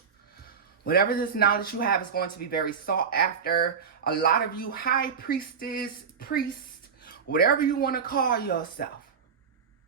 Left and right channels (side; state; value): left; quieter; 6.3 dB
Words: Whatever this knowledge you have is going to be very sought after. A lot of you high priestess, priest, whatever you want to call yourself.